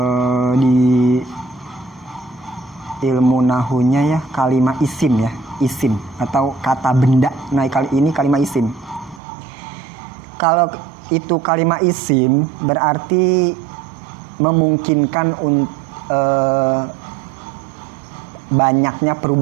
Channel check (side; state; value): left; drops out; at 9.2 s